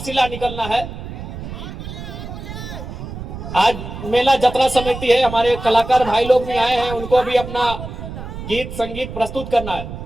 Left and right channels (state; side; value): noise; right; rumble, 9 dB below the sound